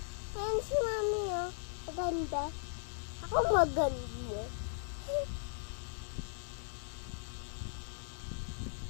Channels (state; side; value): silent; right; digital silence